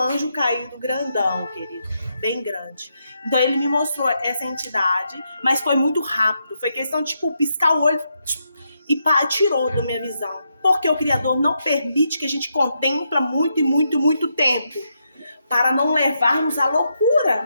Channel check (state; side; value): inverted; both; correlation -0.82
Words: caído grandão, querido, bem grande. Então, ele me mostrou essa entidade, mas foi muito rápido. Foi questão de, piscar o olho e tirou da minha visão. Porque o Criador não permite que a gente contempla muito e muito, muito tempo, para não levarmos à